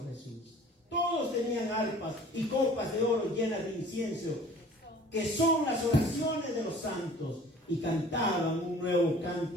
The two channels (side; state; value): both; normal; correlation 0.48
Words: Jesús. Todos tenían arpas y copas de oro llenas de incienso, que son las oraciones de los santos, y cantaban un nuevo